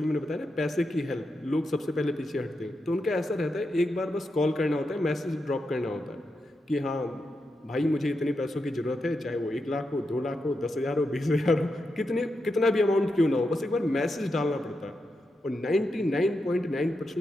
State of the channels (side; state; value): both; normal; correlation 0.86